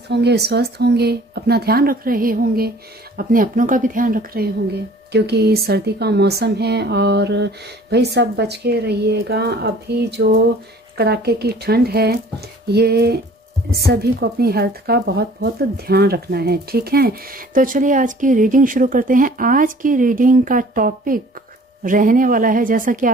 होंगे, स्वस्थ होंगे, अपना ध्यान रख रहे होंगे, अपने अपनों का भी ध्यान रख रहे होंगे क्योंकि सर्दी का मौसम है और भाई सब बच के रहिएगा। अभी जो कड़ाके की ठंड है ये सभी को अपनी हेल्थ का बहुत बहुत ध्यान रखना है, ठीक है। तो चलिए आज की रीडिंग शुरू करते हैं। आज की रीडिंग का टॉपिक रहने वाला है, जैसा कि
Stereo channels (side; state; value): both; normal; correlation 0.51